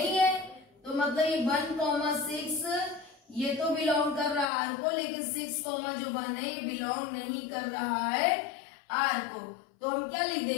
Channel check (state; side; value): drops out; right; at 4.5 s